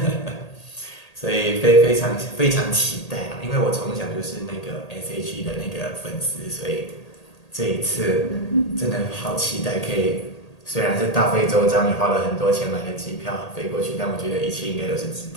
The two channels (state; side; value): late; right; 1.8 ms